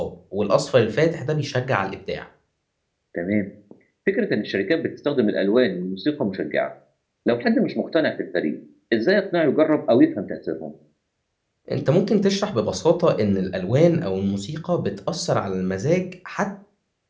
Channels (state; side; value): identical; both; correlation 1.00